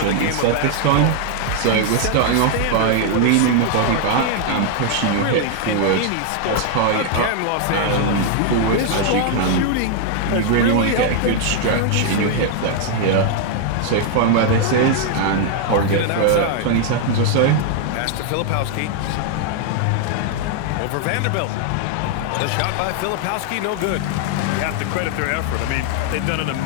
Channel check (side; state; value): both; different; correlation 0.00